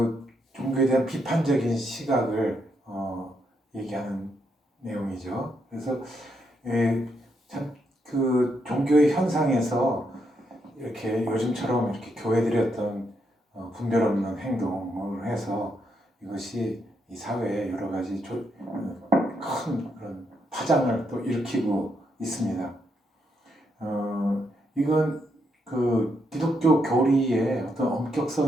종교에 대한 비판적인 시각을 얘기하는 내용이죠. 그래서 참 그 종교의 현상에서 이렇게 요즘처럼 이렇게 교회들이 어떤 분별 없는 행동을 해서 이것이 이 사회에 여러 가지 큰 그런 파장을 또 일으키고 있습니다. 이건 그 기독교 교리의 어떤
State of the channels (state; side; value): normal; both; correlation 0.79